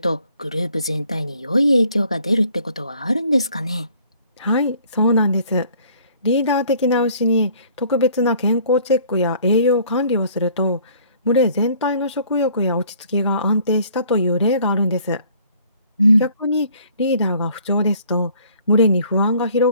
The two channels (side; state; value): both; inverted; correlation -0.57